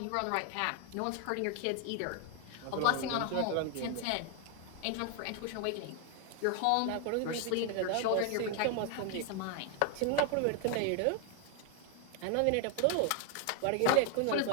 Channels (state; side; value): different; both; correlation 0.00